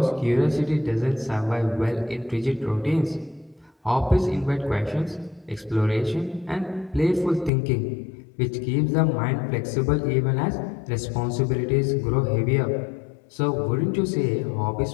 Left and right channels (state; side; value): drops out; right; at 7.5 s